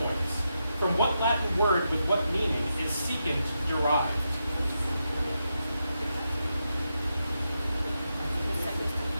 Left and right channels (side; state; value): both; inverted; correlation -0.86